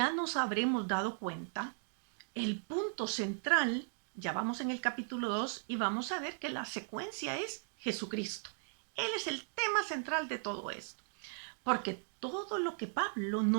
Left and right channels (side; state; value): left; silent; digital silence